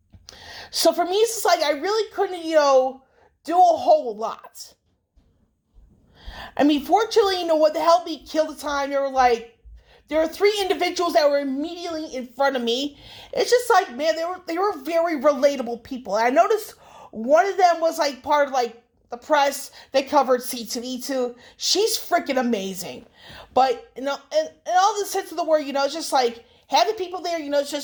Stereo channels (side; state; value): both; identical; correlation 1.00